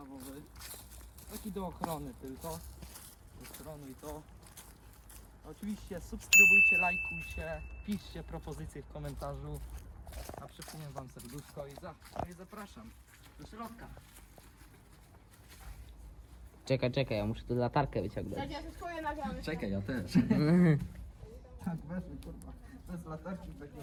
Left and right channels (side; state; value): both; identical; correlation 1.00